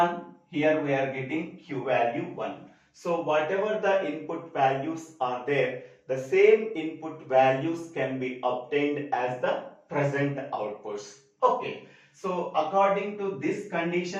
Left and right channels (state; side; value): identical; both; correlation 1.00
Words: here we are getting Q value 1. So whatever the input values are there, the same input values can be obtained as the present outputs. Okay. So according to this